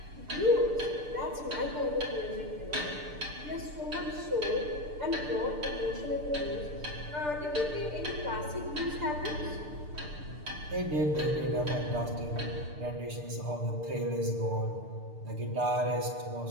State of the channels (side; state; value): left; late; 6.7 ms